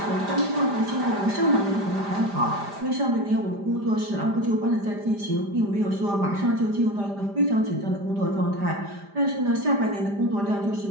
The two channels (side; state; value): left; late; 5.0 ms